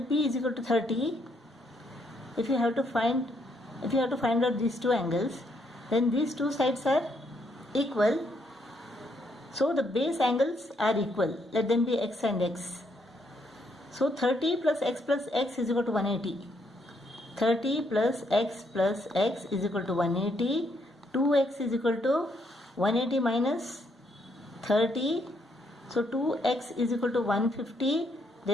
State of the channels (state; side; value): normal; both; correlation 0.74